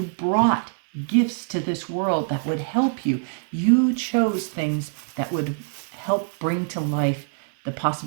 brought gifts to this world that would help you. You chose things that would help bring to life the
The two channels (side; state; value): left; silent; digital silence